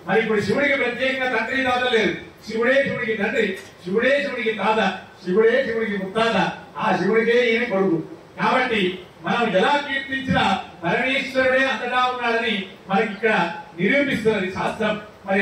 మరి ఇప్పుడు శివుడికి ప్రత్యేకంగా తండ్రి తాత లేదు. శివుడే శివుడికి తండ్రి, శివుడే శివుడికి తాత, శివుడే శివుడికి ముత్తాత, ఆ శివుడికే ఈయన కొడుకు. కాబట్టి మనం ఎలా కీర్తించినా పరమేశ్వరుడే అంతటా ఉన్నాడని మనకి ఇక్కడ నిరూపిస్తున్నది శాస్త్రం. మరి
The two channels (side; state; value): both; identical; correlation 1.00